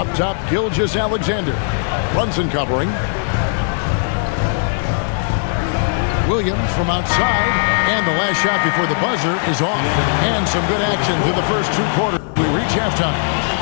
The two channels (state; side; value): silent; right; digital silence